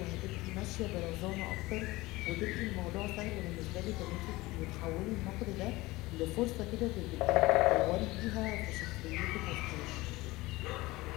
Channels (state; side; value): quieter; right; 20.2 dB